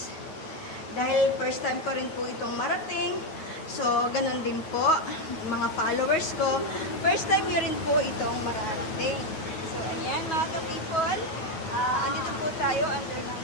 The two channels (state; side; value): late; right; 9.3 ms